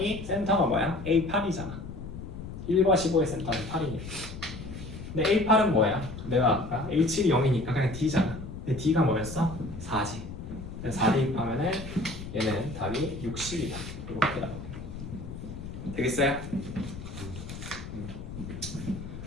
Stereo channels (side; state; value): left; noise; rumble, 10 dB below the sound